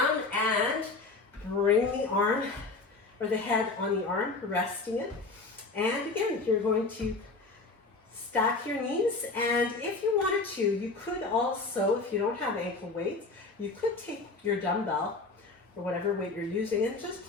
and bring the arm or the head on the arm, resting it. And again, you're going to stack your knees, and if you wanted to, you could also, if you don't have ankle weights, you could take your dumbbell or whatever weight you're using and just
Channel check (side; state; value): right; quieter; 3.7 dB